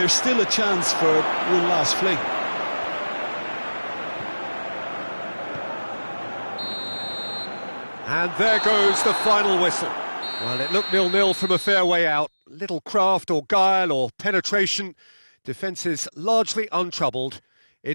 still a chance for one last fling. And there goes the final whistle. Well, it looked 0-0 from a fair way out. Little craft or guile or penetration. Defence is largely untroubled.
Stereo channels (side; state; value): both; inverted; correlation -1.00